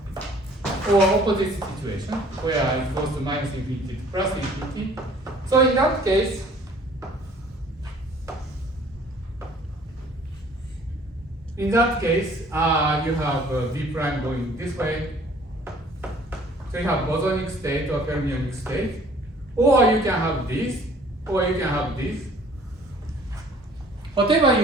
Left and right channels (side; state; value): both; normal; correlation 0.54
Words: or opposite situation where it goes to minus infinity to plus infinity. So in that case, you have V prime going this way. So you have bosonic state or fermionic state, or you can have this, or you can have this. Whatever